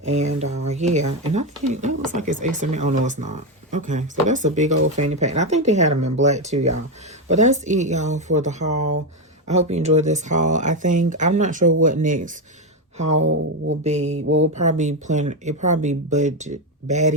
And yeah, and I think that looks like it's XML. Oh no, it's not. Okay, so that's a big old fanny pack. And I think they had them in black too, y'all. But that's it, y'all, for the haul. I hope you enjoyed this haul. I'm not sure what next haul will be. Well, we'll probably be planning, it probably budget,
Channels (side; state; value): both; normal; correlation 0.09